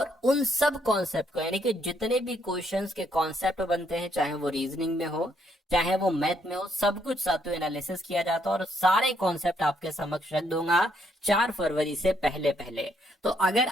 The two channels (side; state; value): both; normal; correlation 0.72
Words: उन सब कॉन्सेप्ट को, यानी कि जितने भी क्वेश्चंस के कॉन्सेप्ट बनते हैं, चाहे वो रीजनिंग में हो चाहे वो मैथ में हो, सब कुछ साथियों एनालिसिस किया जाता है, और सारे कॉन्सेप्ट आपके समक्ष रख दूंगा 4 फरवरी से पहले पहले। तो अगर